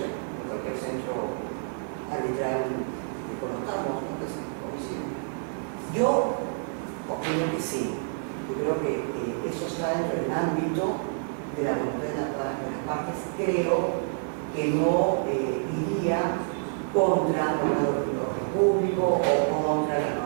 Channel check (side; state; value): left; silent; digital silence